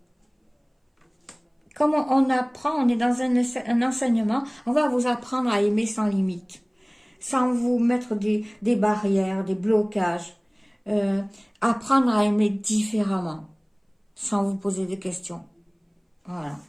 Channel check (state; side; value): identical; both; correlation 1.00